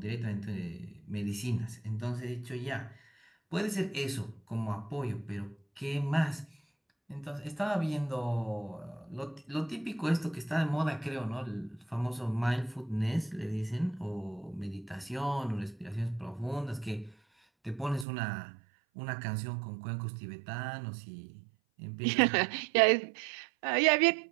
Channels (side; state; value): left; drops out; at 18.1 s